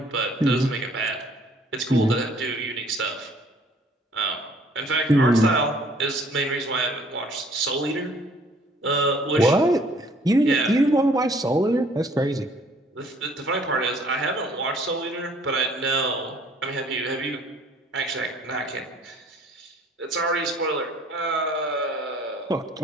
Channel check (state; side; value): normal; both; correlation 0.58